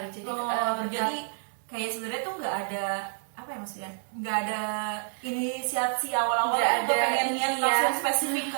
Jadi jadi kayak sebenarnya tuh nggak ada apa ya maksudnya, nggak ada inisiasi awal-awal tuh pengen niat langsung spesifik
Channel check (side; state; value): left; silent; digital silence